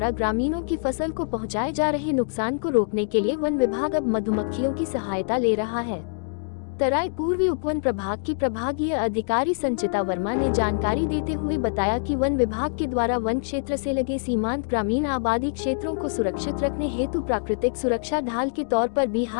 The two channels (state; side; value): silent; right; digital silence